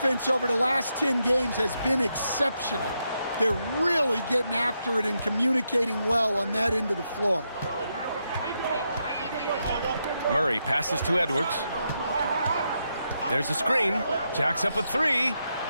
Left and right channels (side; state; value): both; inverted; correlation -0.83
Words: over the last 10 games has been exceptional. They're really getting after it and communicating well on that end of the floor. Murray passes to Edwards. There's a screen. Jacks up a 3.